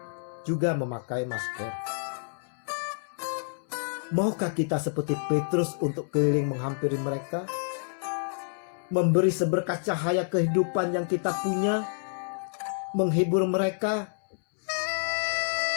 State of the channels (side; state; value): right; silent; 59 dB below the other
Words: juga memakai masker. Maukah kita seperti Petrus untuk keliling menghampiri mereka? Memberi seberkas cahaya kehidupan yang kita punya? Menghibur mereka,